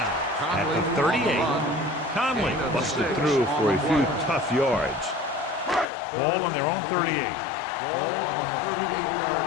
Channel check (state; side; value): drops out; right; at 5.9 s